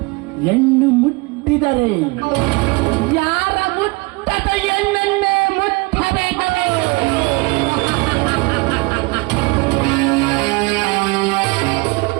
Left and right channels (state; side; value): quieter; left; 26.3 dB